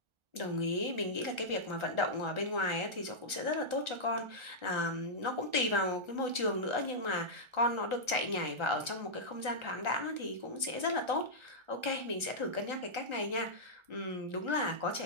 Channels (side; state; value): left; late; 1.3 ms